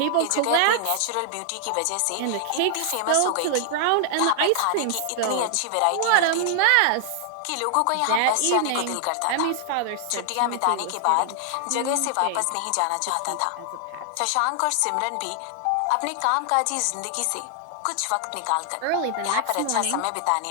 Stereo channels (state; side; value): different; both; correlation 0.00